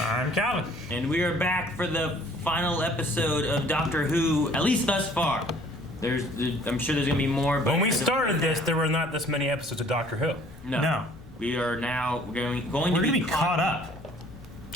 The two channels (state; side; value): noise; left; rumble, 20 dB below the sound